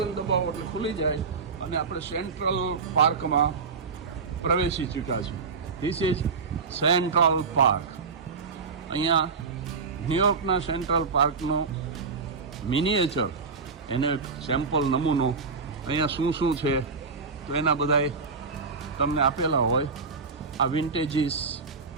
દબાવો એટલે ખુલી જાય અને આપણે સેન્ટ્રલ પાર્કમાં પ્રવેશી ચૂક્યા છીએ. This is central park. અહીંયા ન્યુયોર્કના સેન્ટ્રલ પાર્કનો મિનિએચર, એને સેમ્પલ નમૂનો અહીંયા શું છે તો એના બધાય તમને આપેલા હોય. આ વિન્ટેજીસ,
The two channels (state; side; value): quieter; left; 4.9 dB